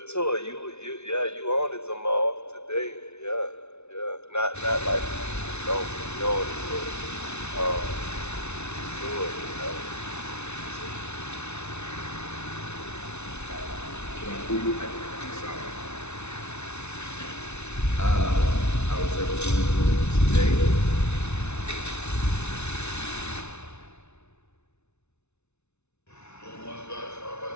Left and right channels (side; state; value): right; late; 0.81 ms